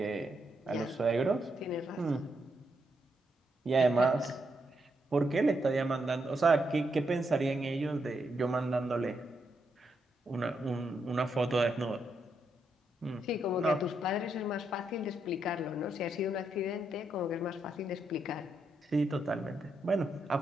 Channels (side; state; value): both; normal; correlation 0.80